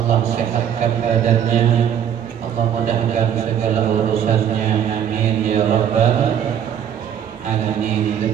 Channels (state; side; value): quieter; left; 9.2 dB